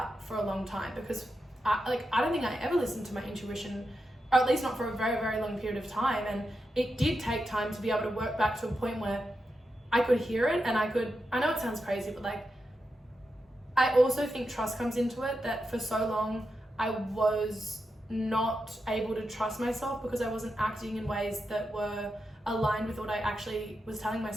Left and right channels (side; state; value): both; normal; correlation 0.88